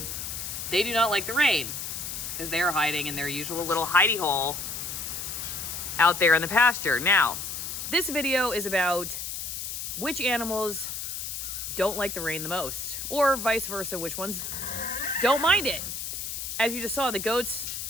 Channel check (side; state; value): left; noise; hiss, 5 dB below the sound